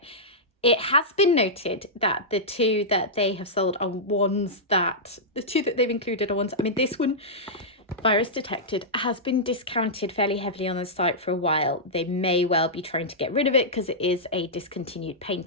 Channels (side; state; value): both; normal; correlation -0.11